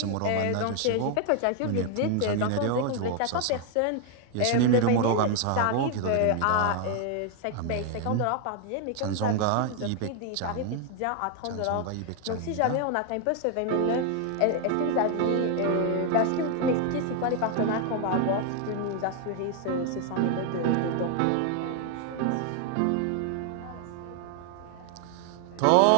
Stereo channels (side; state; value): both; different; correlation 0.00